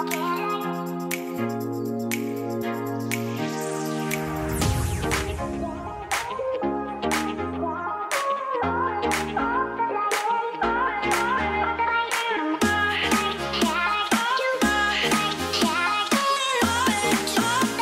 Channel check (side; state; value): both; identical; correlation 1.00